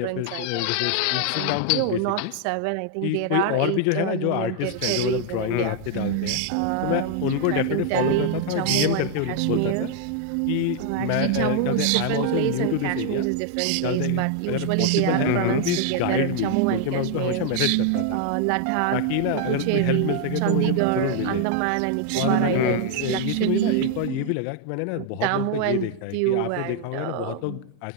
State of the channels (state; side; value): different; both; correlation 0.00